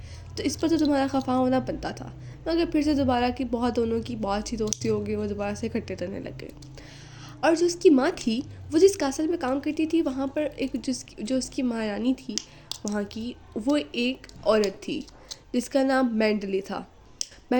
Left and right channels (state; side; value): identical; both; correlation 1.00